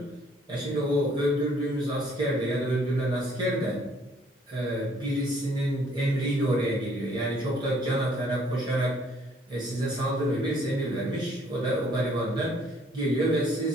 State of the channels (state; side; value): normal; both; correlation 0.62